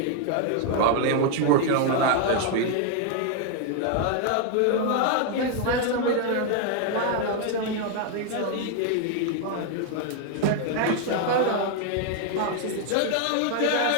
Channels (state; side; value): different; both; correlation 0.00